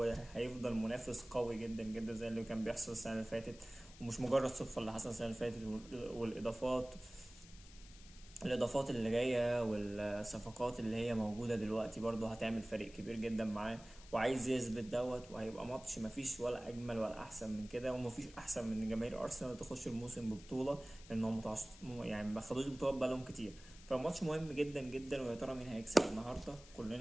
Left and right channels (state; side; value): noise; left; hiss, 20 dB below the sound